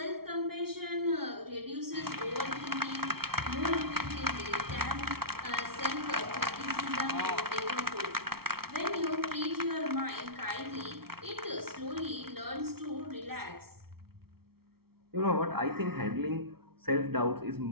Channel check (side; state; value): left; late; 0.94 ms